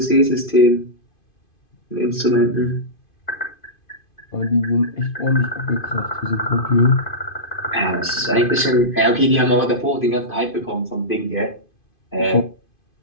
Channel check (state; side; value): late; right; 2.5 ms